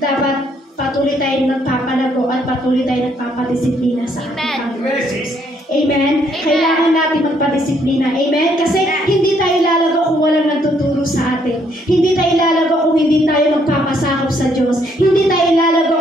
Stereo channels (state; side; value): normal; both; correlation 0.69